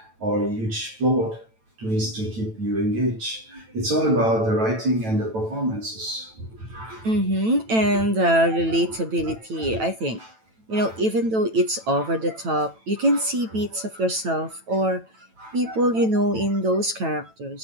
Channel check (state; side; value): late; left; 9.0 ms